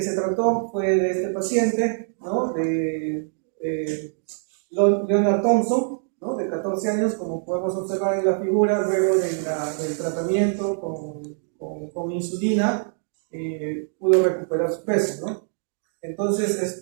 se trató fue de este paciente, ¿no? De Leonard Thompson, ¿no? De 14 años, como podemos observar en la figura, luego del tratamiento con insulina pudo recuperar su peso, ¿no? Entonces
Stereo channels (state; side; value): silent; left; digital silence